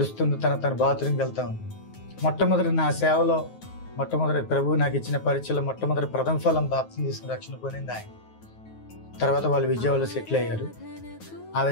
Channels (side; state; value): right; late; 9.4 ms